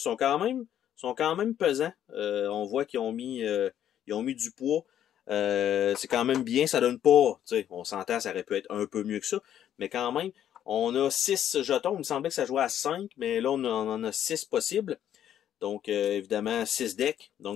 sont quand même pesants. On voit qu'ils ont mis du poids. C'est quand même bien, ça donne pas, tu sais, on s'entend, ça aurait pu être un peu mieux que ça, mais quand même, on a 6 jetons. Il me semblait que ça jouait à 5, mais là, on en a 6 possibles. Donc, évidemment, 6 decks,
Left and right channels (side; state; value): right; quieter; 10.5 dB